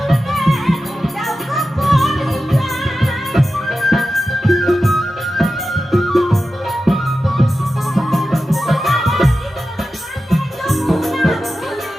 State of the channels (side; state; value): both; normal; correlation 0.93